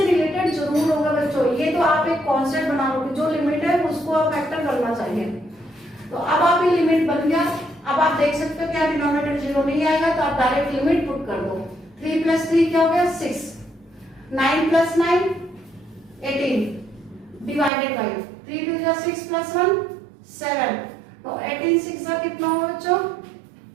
रिलेटेड जरूर होगा बच्चों, ये तो आप एक कॉन्सेप्ट बना लोगे, जो लिमिट है उसको आप फैक्टर करना चाहिए। तो अब आप ये लिमिट बन गया, अब आप देख सकते हो क्या डिनोमिनेटर 0 नहीं आएगा, तो आप डायरेक्ट लिमिट पुट कर दो। 3 प्लस 3 क्या हो गया 6, 9 प्लस 9 18 डिवाइडेड बाई 3 2 6 प्लस 1 7, तो 18 6 का कितना होगा बच्चों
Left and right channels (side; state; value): left; drops out; at 17.7 s